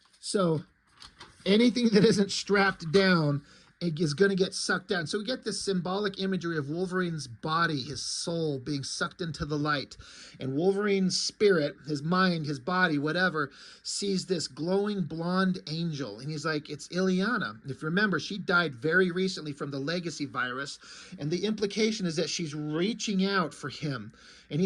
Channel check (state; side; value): identical; both; correlation 1.00